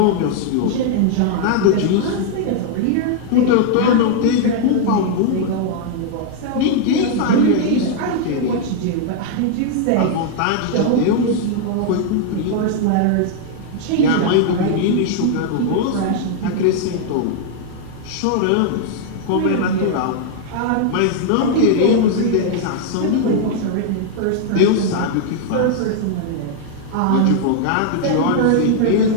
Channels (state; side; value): different; both; correlation 0.00